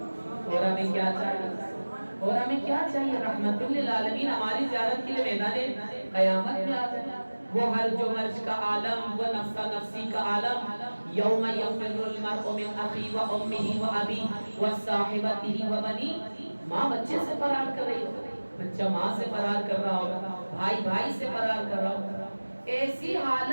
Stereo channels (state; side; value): inverted; both; correlation -1.00